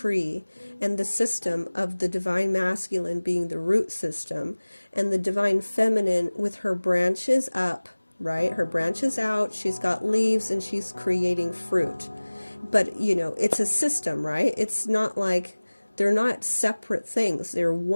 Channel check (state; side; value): inverted; both; correlation -1.00